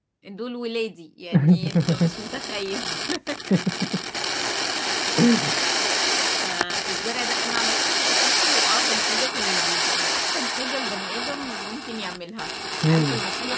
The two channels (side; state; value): both; identical; correlation 1.00